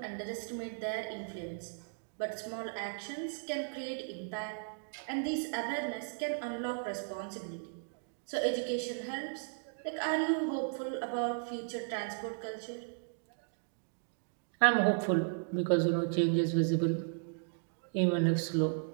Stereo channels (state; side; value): silent; left; digital silence